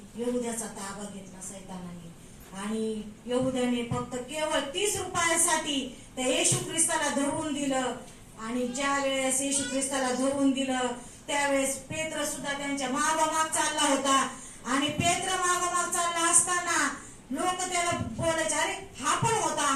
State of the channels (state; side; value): identical; both; correlation 1.00